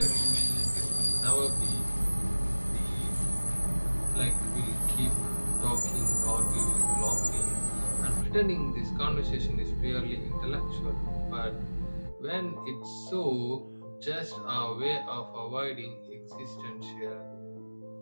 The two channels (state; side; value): inverted; both; correlation -1.00